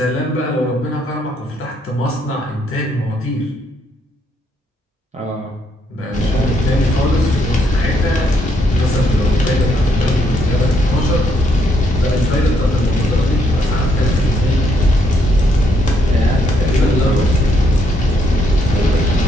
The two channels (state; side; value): normal; both; correlation 0.73